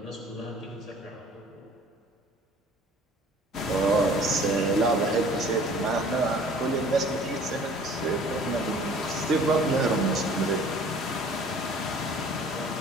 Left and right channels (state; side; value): normal; both; correlation 0.50